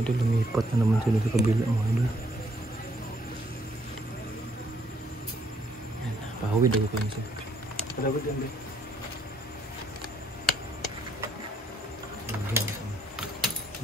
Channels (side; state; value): both; normal; correlation 0.69